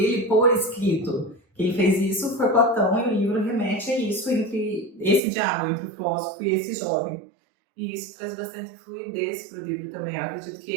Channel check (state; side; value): drops out; left; at 5.2 s